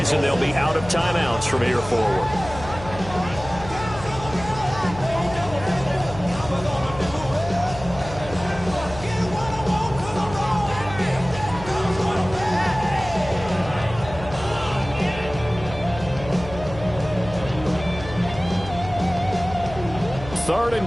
they'll be out of timeouts from here forward. Third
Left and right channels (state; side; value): noise; left; hum, 13 dB below the sound